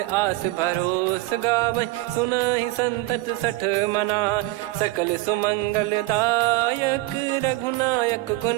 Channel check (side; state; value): left; quieter; 19.6 dB